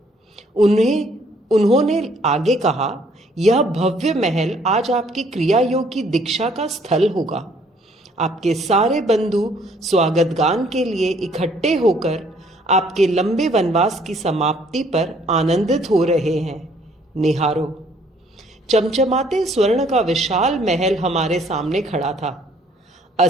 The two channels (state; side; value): normal; both; correlation 0.62